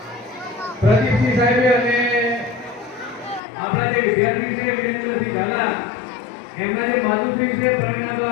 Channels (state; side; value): drops out; right; at 3.4 s